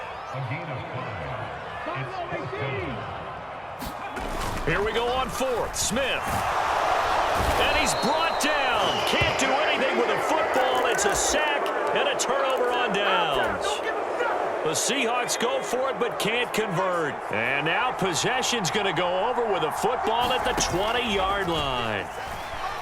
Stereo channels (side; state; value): both; identical; correlation 1.00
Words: Here we go on 4th. Smith. And he's brought down. Can't do anything with a football. It's a sack and a turnover on downs. The Seahawks go for it but can't convert. And now possession's going to go over with a football at the 20-yard line.